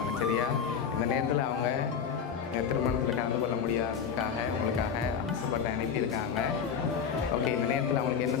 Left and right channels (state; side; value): quieter; right; 7.1 dB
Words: சரியா? இந்த நேரத்தில் அவங்க திருமணத்தில் கலந்து கொள்ள முடியாததுக்காக உங்களுக்காக ஆசைப்பட்டு அனுப்பியிருக்காங்க. ஓகே, இந்த நேரத்தில் அவங்களுக்கு